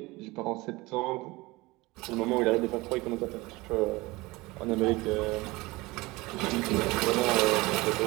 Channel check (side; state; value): left; quieter; 21.8 dB